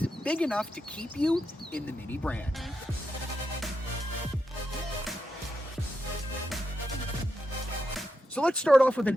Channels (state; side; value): normal; both; correlation 0.85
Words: big enough to keep you in the Mini brand. So let's start off with